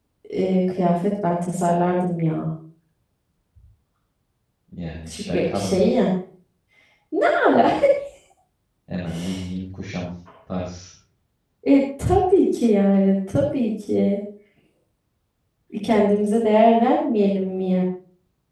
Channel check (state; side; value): identical; both; correlation 1.00